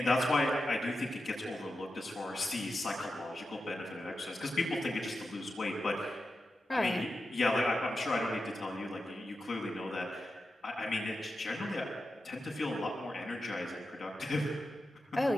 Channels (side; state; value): both; normal; correlation 0.90